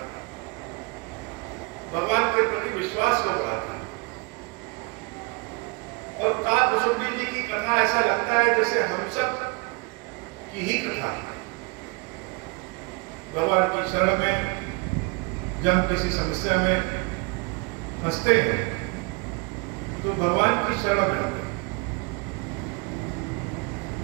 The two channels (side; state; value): left; quieter; 30.8 dB